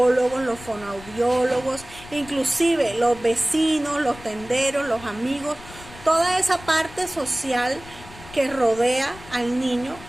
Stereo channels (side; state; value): left; noise; rumble, 18 dB below the sound